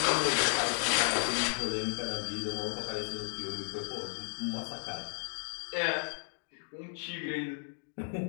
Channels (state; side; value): silent; right; digital silence